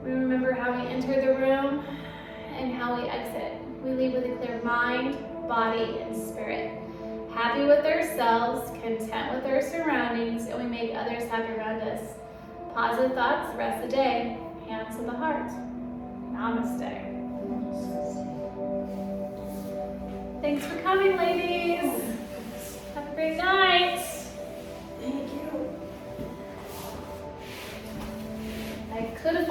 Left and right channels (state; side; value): identical; both; correlation 1.00